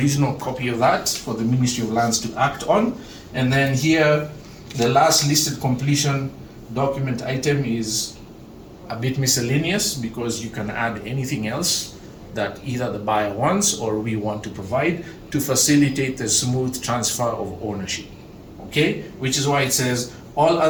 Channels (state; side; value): identical; both; correlation 1.00